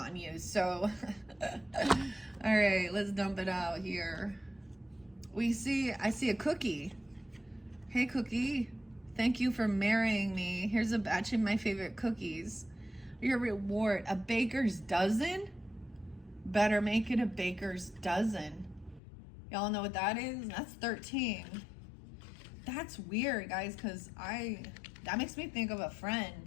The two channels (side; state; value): right; drops out; at 19.0 s